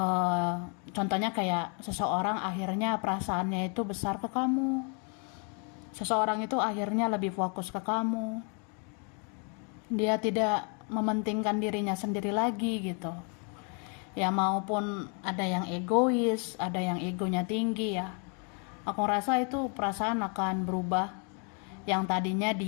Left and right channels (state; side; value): quieter; right; 38.5 dB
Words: Contohnya kayak seseorang akhirnya perasaannya itu besar ke kamu. Seseorang itu akhirnya lebih fokus ke kamu. Dia tidak mementingkan dirinya sendiri lagi gitu. Ya maupun ada yang egois, ada yang egonya tinggi ya. Aku rasa itu perasaan akan berubah. Yang tadinya